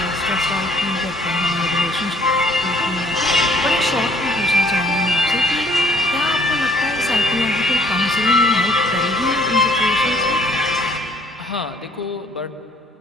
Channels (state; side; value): normal; both; correlation 0.60